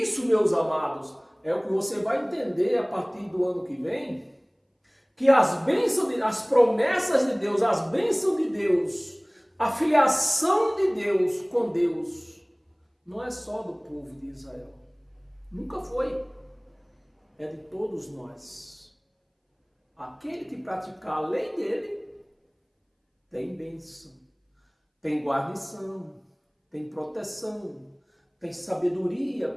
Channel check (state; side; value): identical; both; correlation 1.00